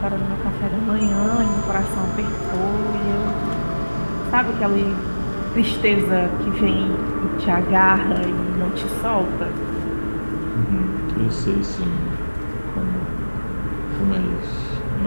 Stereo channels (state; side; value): inverted; both; correlation -1.00